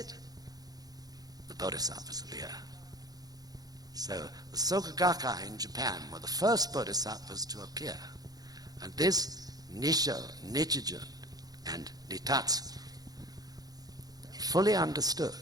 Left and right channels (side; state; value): left; late; 0.19 ms